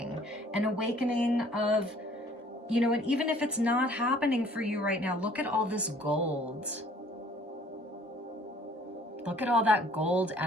of, you know, and even if it's not happening for you right now, look at all this gold. Look at all that gold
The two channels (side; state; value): both; normal; correlation 0.56